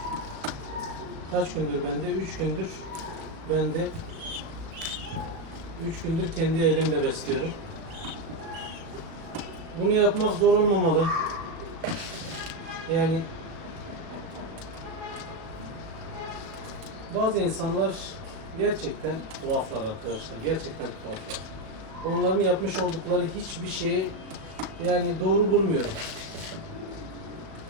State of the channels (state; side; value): late; left; 37 ms